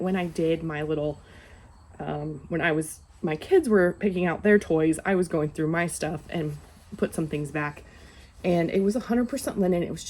when I did my little My kids were picking out their toys, I was going through my stuff and put some things back. And it was 100% linen. It was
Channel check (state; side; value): identical; both; correlation 1.00